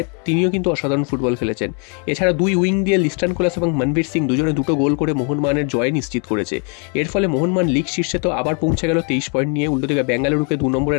তিনিও কিন্তু অসাধারণ ফুটবল খেলেছেন। এছাড়া দুই উইং দিয়ে লিস্টান কোলাস এবং মনবীর সিং দুজনে দুটো গোল করে মোহনবাগানের জয় নিশ্চিত করেছে। এর ফলে মোহনবাগান লিগ শীর্ষে তো আবার পৌঁছে গেল 23 পয়েন্ট নিয়ে। উল্টো দিকে বেঙ্গালুরুকে 2 নম্বরে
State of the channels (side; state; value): right; quieter; 38.6 dB